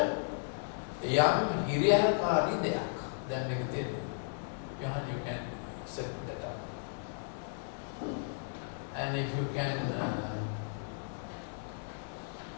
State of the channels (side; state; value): right; silent; digital silence